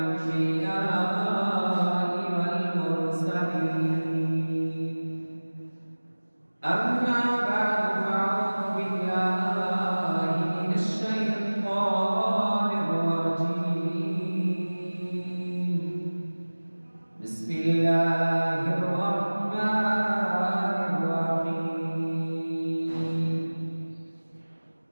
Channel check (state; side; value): inverted; both; correlation -1.00